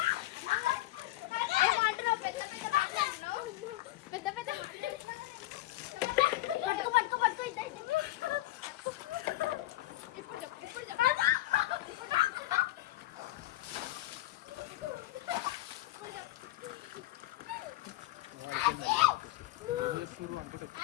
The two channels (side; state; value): right; quieter; 17.3 dB